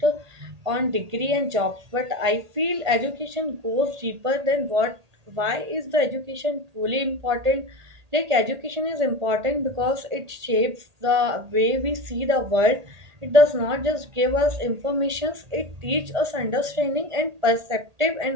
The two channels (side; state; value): left; late; 1.8 ms